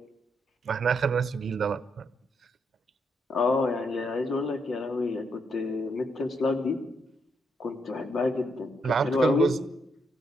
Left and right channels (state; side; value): normal; both; correlation 0.77